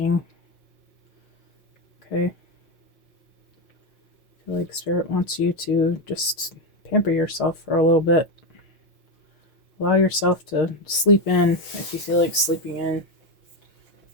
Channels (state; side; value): late; right; 6.5 ms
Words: Okay. I feel like Spirit wants you to just pamper yourself for a little bit. Allow yourself to sleep in if you feel like sleeping in.